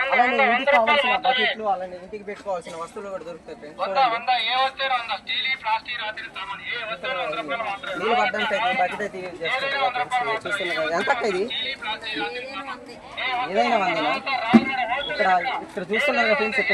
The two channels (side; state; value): both; identical; correlation 1.00